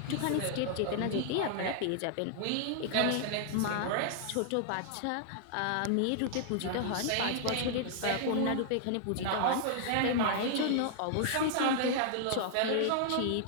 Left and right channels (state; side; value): different; both; correlation -0.01